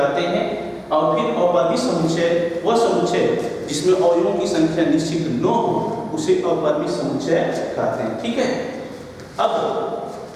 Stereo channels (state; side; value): identical; both; correlation 1.00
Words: हैं। और फिर अपरिमित समुच्चय वह समुच्चय जिसमें अवयवों की संख्या निश्चित न हो उसे अपरिमित समुच्चय कहते हैं। ठीक है, अब